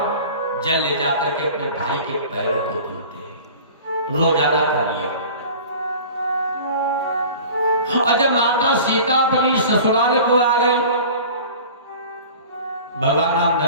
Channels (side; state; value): both; inverted; correlation -0.41